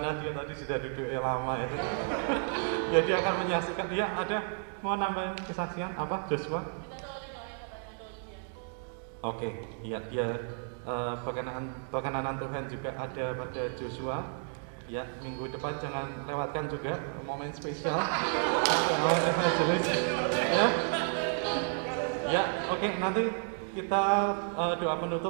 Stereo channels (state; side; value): silent; left; 56 dB below the other